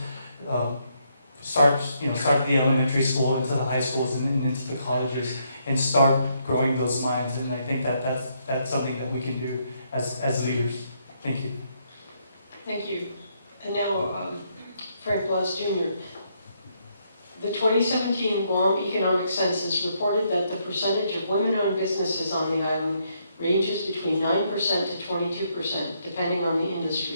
start at the elementary school, into the high schools and into the colleges and start growing those minds. And I think that's something that we can do as leaders. Thank you. Thank you. And now, Frank Blas Jr. The 2017 Guam Economic Census reported that the percentage of women-owned businesses on the island ranges between 9% to 22%, depending on the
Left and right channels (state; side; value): inverted; both; correlation -0.75